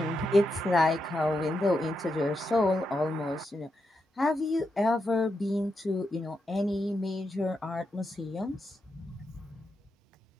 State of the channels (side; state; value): both; normal; correlation 0.85